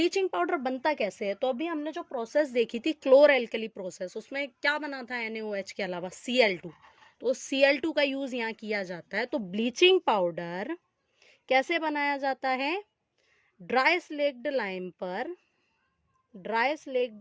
पाउडर बनता कैसे है, तो अभी हमने जो प्रोसेस देखी थी क्लोर एल्कली प्रोसेस, उसमें क्या बना था NaOH के अलावा? Cl2। तो Cl2 का यूज यहाँ किया जाता है। तो ब्लीचिंग पाउडर कैसे बनाया जाता है? ड्राई स्लेक्ड लाइम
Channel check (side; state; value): both; identical; correlation 1.00